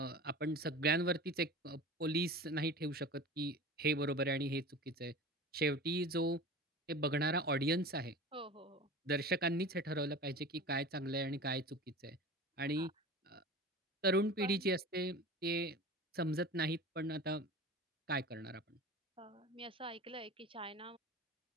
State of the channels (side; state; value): both; normal; correlation 0.35